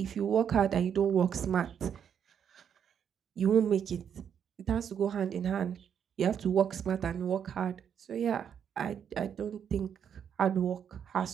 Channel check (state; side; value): quieter; left; 8.2 dB